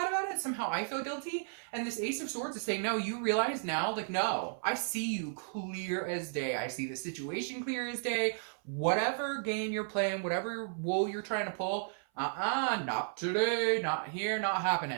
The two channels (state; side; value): silent; left; 55 dB below the other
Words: about it, somehow I feel guilty. And this Ace of Swords is saying, no, you realize now, like, no, I see you clear as day. I see the situation clear as day. Whatever game you're playing, whatever wool you're trying to pull, not today, not here, not happening.